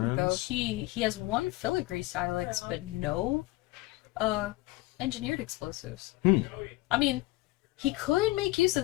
though. He has 1 Filigree Silex, but no engineered explosives. I mean, he could make use of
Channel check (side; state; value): right; quieter; 20.2 dB